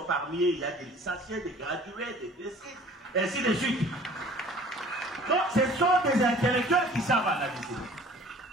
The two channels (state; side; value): normal; both; correlation 0.50